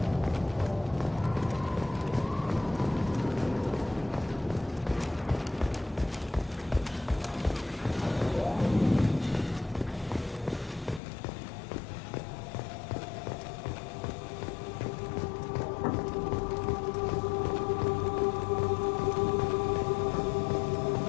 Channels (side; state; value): right; drops out; at 11.0 s